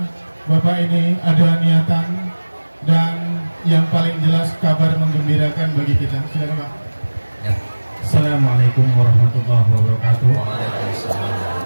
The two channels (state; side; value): inverted; both; correlation -1.00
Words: Bapak ini ada niatan dan yang paling jelas kabar menggembirakan bagi kita. Silakan Pak. Ya. Assalamualaikum warahmatullahi wabarakatuh. Waalaikumsalam.